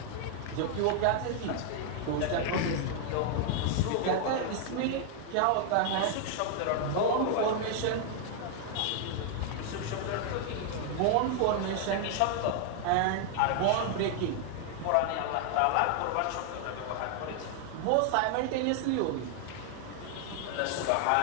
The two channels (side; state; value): both; different; correlation 0.00